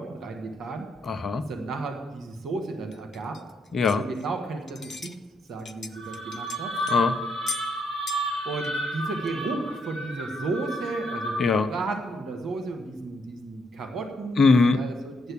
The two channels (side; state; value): both; normal; correlation 0.76